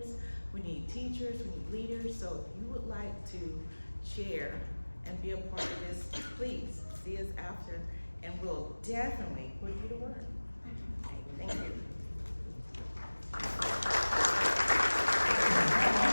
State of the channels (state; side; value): inverted; both; correlation -1.00